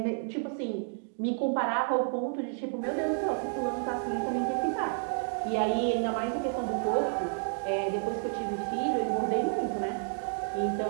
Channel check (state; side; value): silent; left; 57 dB below the other